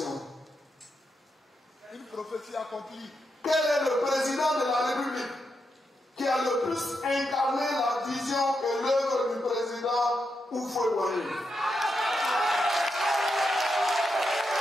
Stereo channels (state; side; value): normal; both; correlation 0.84